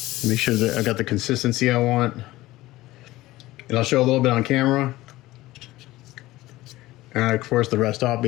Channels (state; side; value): quieter; right; 17.7 dB